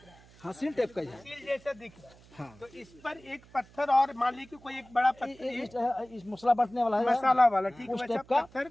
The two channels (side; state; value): right; noise; hum, 25 dB below the sound